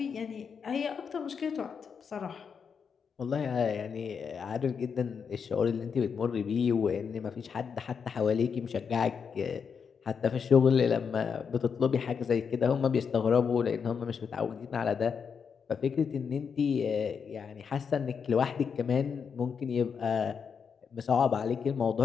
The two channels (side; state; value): right; quieter; 6.4 dB